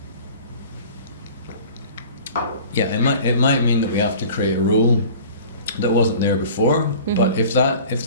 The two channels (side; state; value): both; inverted; correlation -0.43